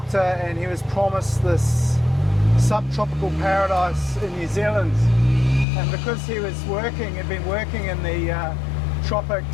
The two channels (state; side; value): drops out; right; at 5.7 s